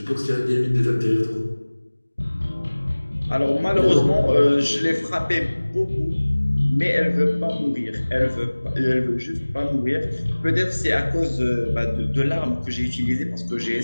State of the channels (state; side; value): inverted; both; correlation -1.00